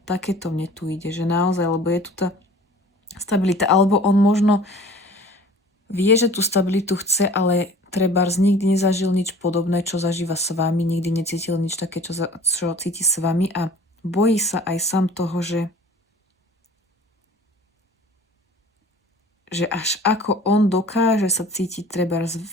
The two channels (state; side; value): normal; both; correlation 0.46